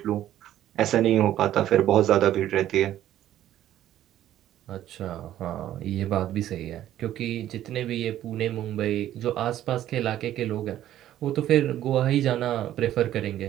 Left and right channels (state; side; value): quieter; left; 12.5 dB